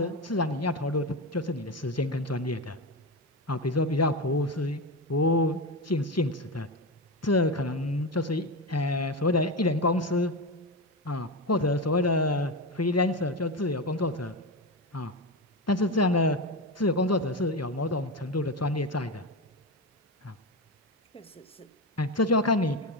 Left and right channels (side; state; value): both; normal; correlation 0.18